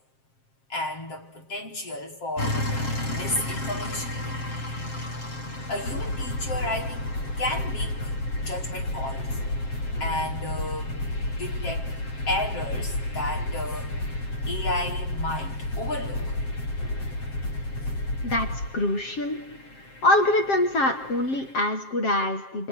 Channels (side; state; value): right; late; 7.5 ms